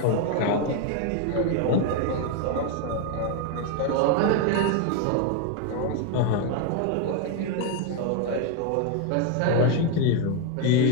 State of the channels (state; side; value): different; both; correlation 0.01